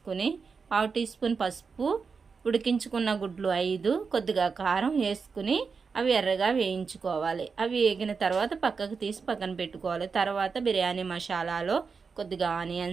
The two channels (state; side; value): quieter; left; 5.2 dB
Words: 1/2 టీ స్పూన్ పసుపు, ఉడికించుకున్న గుడ్లు 5, కొద్దిగా కారం వేసుకుని అవి ఎర్రగా వేయించుకోవాలి. అవి వేగిన తర్వాత పక్కకు తీసి పక్కన పెట్టుకోవాలి. తర్వాత బిర్యానీ మసాలాలో కొద్దిగా